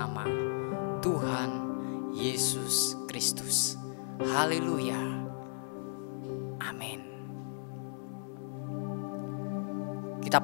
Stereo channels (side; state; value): right; silent; 54 dB below the other